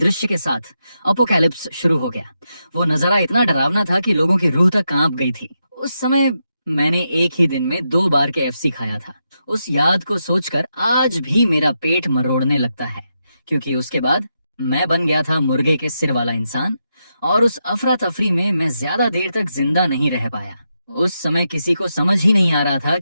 के साथ अपोकैलिप्स शुरू हो गया। वो नजारा इतना डरावना था कि लोगों की रूह तक कांप गई थी। उस समय मैंने एक ही दिन में 2 बार KFC खाया था। उस याद को सोचकर आज भी मेरा पेट मरोड़ने लगता है, क्योंकि उसके बाद मैं बन गया था मुर्गे के सिर वाला इंसान और उस अफरा तफरी में मैं ज्यादा देर तक जिंदा नहीं रह पाया। उस समय किसी को समझ ही नहीं आ रहा था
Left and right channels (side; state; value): both; inverted; correlation -0.85